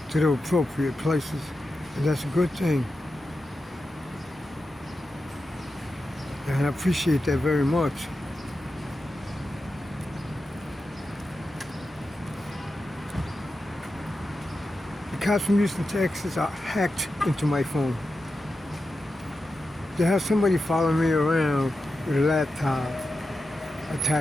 to the appropriate places, and that's a good thing. And I appreciate that very much. The cops from Houston, Texas are hacked into my phone. They have somebody following me around with a laptop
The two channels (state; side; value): normal; both; correlation 0.90